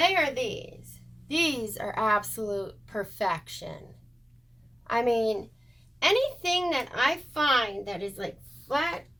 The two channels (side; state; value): both; normal; correlation 0.95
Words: are these. These are absolute perfection. I mean, anything that I find that is like flat,